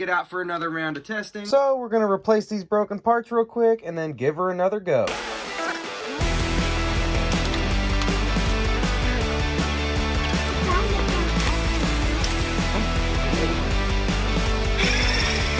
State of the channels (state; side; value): identical; both; correlation 1.00